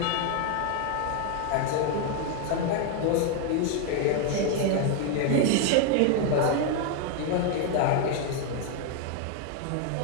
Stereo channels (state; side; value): different; both; correlation 0.01